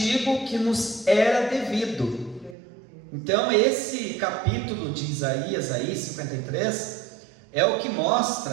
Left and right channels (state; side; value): drops out; left; at 2.6 s